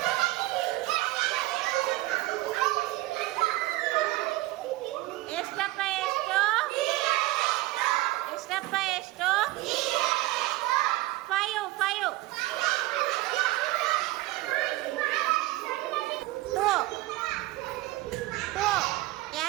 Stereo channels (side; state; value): left; quieter; 18.7 dB